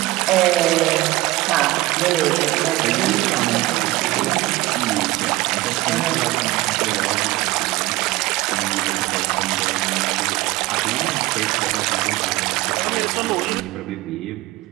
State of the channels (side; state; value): left; quieter; 18.9 dB